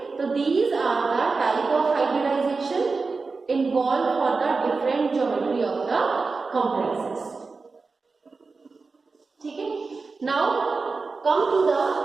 तो these are the type of hybridization involved for the different geometry of the complexes. ठीक है, now come to the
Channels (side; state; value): left; quieter; 4.2 dB